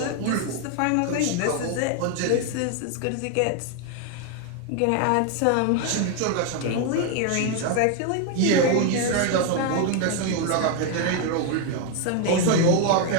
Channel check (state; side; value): different; both; correlation 0.01